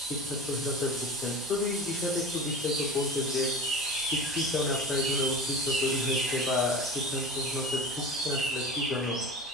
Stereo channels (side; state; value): both; normal; correlation 0.33